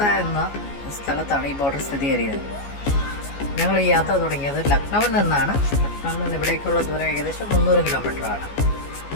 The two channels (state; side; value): late; right; 14 ms